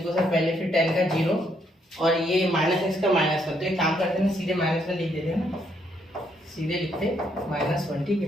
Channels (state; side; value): normal; both; correlation 0.73